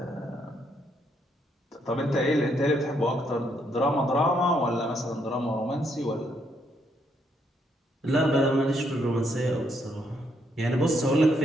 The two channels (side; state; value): both; normal; correlation 0.74